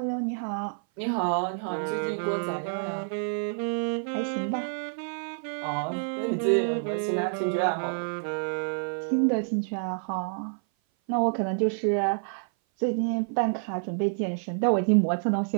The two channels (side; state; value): left; silent; 56 dB below the other